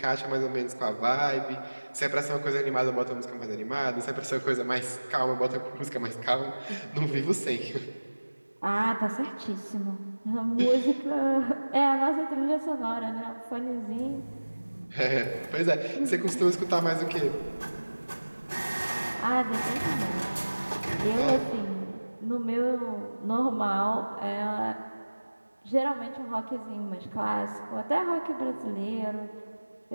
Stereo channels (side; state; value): both; inverted; correlation -1.00